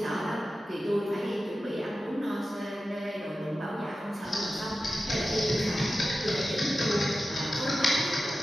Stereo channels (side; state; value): both; normal; correlation 0.94